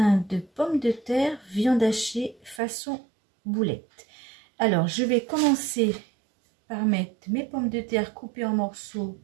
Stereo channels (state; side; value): drops out; left; at 2.6 s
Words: de pommes de terre, viande hachée façon boulette. Alors, je vais commencer par mettre mes pommes de terre coupées en morceaux